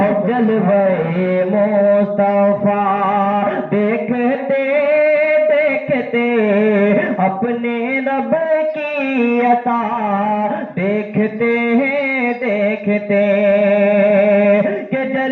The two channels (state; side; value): identical; both; correlation 1.00